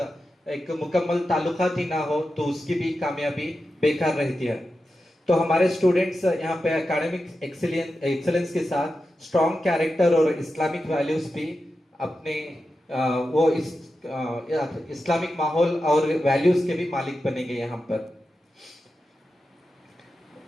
एक मुकम्मल ताल्लुकात ही ना हो तो उसकी भी कामयाबी बेकार रहती है। तो हमारे स्टूडेंट्स यहाँ पे एकेडमिक एक्सीलेंस के साथ स्ट्रॉन्ग कैरेक्टर और इस्लामिक वैल्यूज भी अपने वो इस्लामिक माहौल और वैल्यूज के भी मालिक बनेंगे यहाँ पर।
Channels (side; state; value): both; normal; correlation 0.91